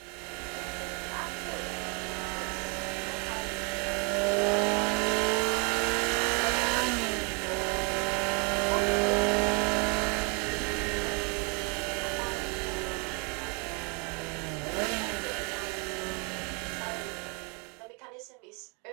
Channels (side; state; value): left; quieter; 34.9 dB